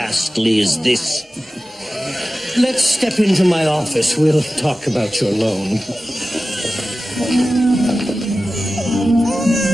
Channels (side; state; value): both; normal; correlation 0.95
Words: as this. Let's step into my office. We'll talk about your loan.